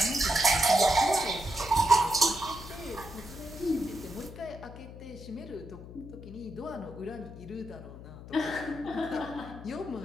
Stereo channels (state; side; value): noise; left; hum, 14 dB below the sound